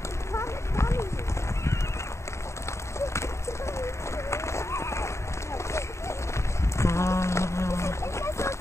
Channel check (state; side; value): late; right; 0.14 ms